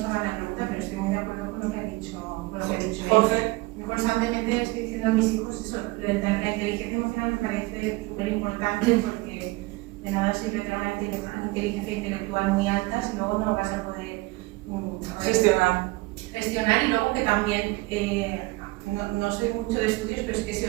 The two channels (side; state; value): left; quieter; 22.6 dB